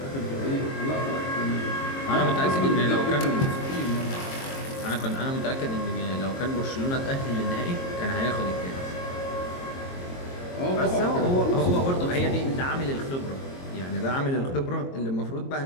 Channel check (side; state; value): right; late; 22 ms